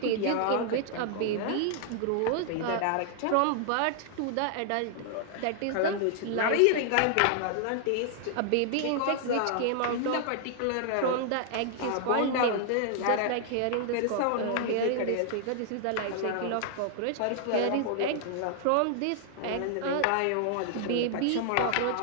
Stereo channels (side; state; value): both; different; correlation -0.01